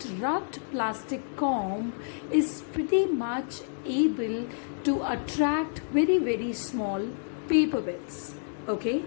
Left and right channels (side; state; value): right; silent; digital silence